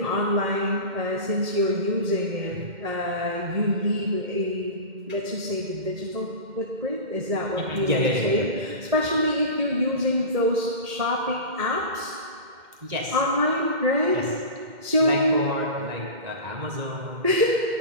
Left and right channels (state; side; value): late; left; 2.1 ms